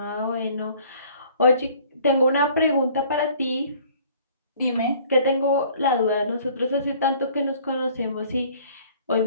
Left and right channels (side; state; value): both; inverted; correlation -0.54